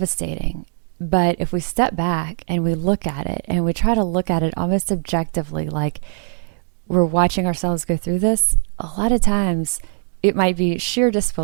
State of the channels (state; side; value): silent; left; digital silence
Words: But if we step back and we look at it and we try to look at it almost objectively, like we're watching ourselves go through this, a lot of times it might be sheer